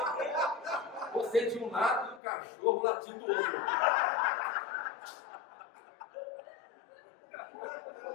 Você de um lado e o cachorro latindo do outro.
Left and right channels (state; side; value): drops out; right; at 2.2 s